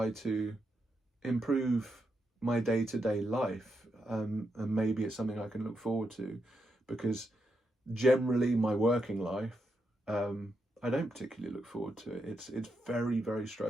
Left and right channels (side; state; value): both; normal; correlation 0.83